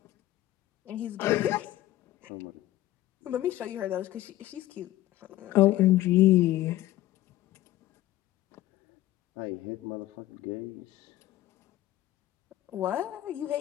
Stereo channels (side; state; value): right; quieter; 15.2 dB